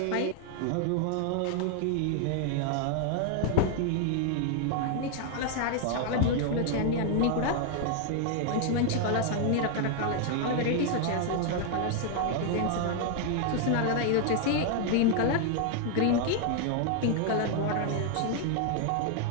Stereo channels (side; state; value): both; different; correlation 0.00